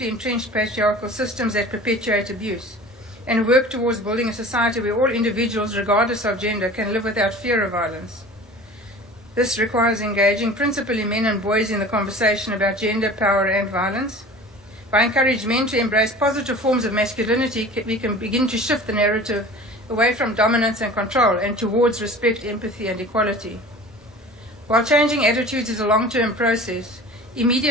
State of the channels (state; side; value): normal; both; correlation 0.41